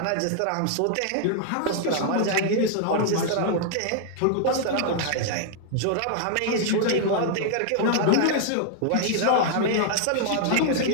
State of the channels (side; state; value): both; different; correlation 0.00